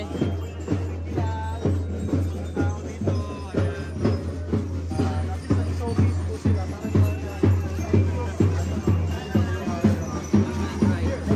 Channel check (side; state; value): both; identical; correlation 1.00